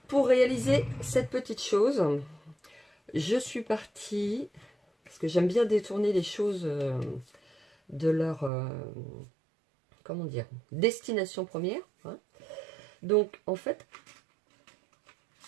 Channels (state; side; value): drops out; left; at 8.5 s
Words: pour réaliser cette petite chose, je suis partie, parce que j'aime bien détourner les choses de leur, comment dire, destination première, hein. Donc, en fait,